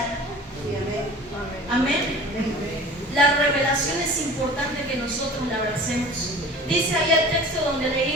Amén. La revelación es importante que nosotros la abracemos. Dice ahí el texto donde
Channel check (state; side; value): normal; both; correlation 0.42